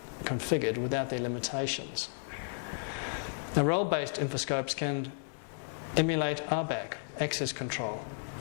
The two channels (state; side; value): silent; right; 56 dB below the other